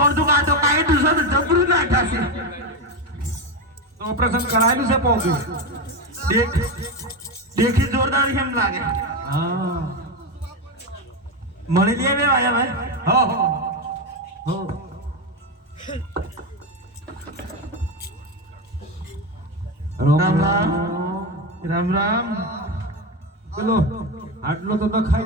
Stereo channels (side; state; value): both; normal; correlation 0.14